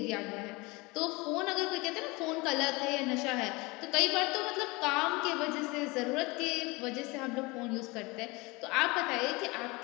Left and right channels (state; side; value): quieter; right; 24.7 dB